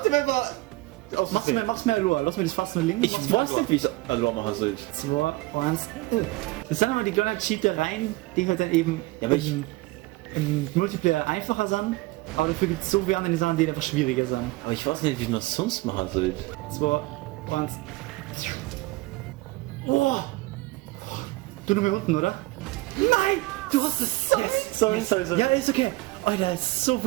wenn wir. Mach's mir Aloha. Lass mir das fast nur links. Ich weiß nicht, wie ich Aloha machen soll. 2, 1. Das sind immer die kleinen Cheatereien, die halt dann eben Ja, aber im Multiplayer einfacher sind. Aber dafür gibt es so viele andere Sachen, die einfach schwieriger sind. Aber ich weiß nicht, wie ich noch sonst machen soll. 2, 1. Oh! Du nur mehr unten, oder? Nein! Du hast es! Sorry. Ja, ist okay. Alter, ist so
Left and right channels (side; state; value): left; quieter; 20.9 dB